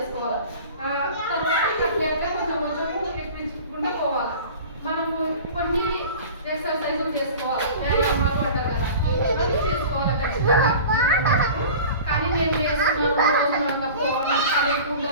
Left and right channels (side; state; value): both; inverted; correlation -0.39